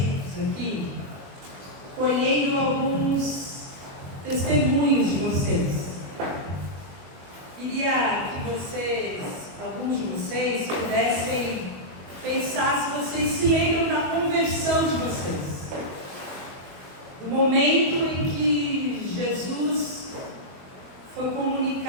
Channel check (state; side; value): late; left; 22 ms